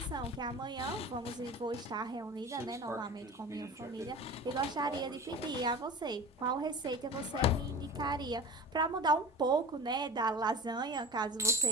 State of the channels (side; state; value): both; normal; correlation 0.36